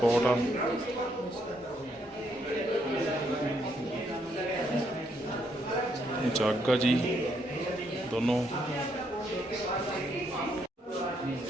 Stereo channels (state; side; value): normal; both; correlation 0.74